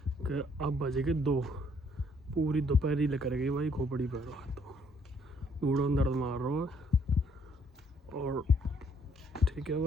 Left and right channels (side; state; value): both; normal; correlation 0.66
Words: कि अब बजे के 2, पूरी दोपहर ही लेकर गई भाई, खोपड़ी पर तो बूढ़ों दर्द मार रहा है। और ठीक है